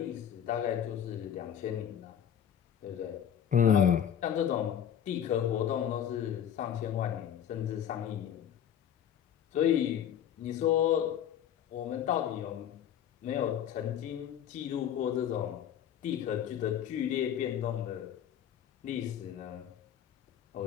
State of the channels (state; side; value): quieter; right; 9.6 dB